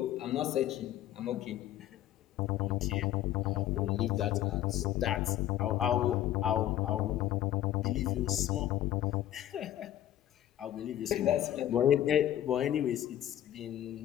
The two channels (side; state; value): right; quieter; 12.4 dB